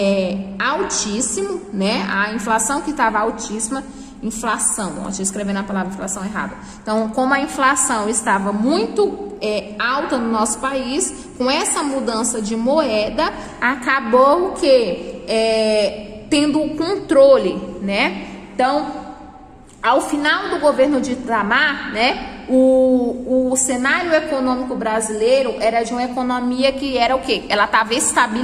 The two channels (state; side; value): identical; both; correlation 1.00